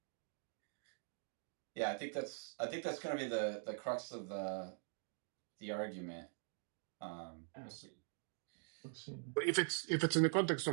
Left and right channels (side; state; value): left; silent; digital silence